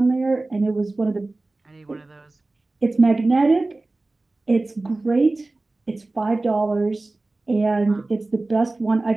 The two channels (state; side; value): quieter; left; 3.1 dB